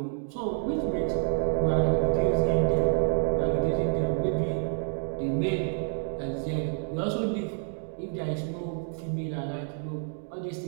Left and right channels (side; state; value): left; silent; 59 dB below the other